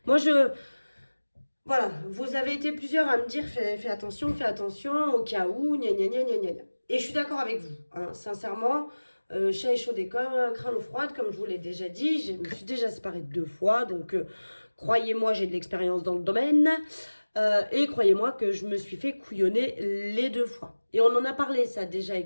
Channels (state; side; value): inverted; both; correlation -1.00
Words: Moi, voilà, vous avez été plusieurs à me dire fais attention au cas où, gna gna gna gna gna. Et je suis d'accord avec vous, hein, sincèrement, chat échaudé comme craint l'eau froide, comme je vous l'ai déjà dit, je me suis déjà séparée 2 fois, donc croyez-moi, j'ai de l'expérience dans le domaine, et croyez-moi que je me suis fait couillonner les 2 fois. Et on en a parlé ça déjà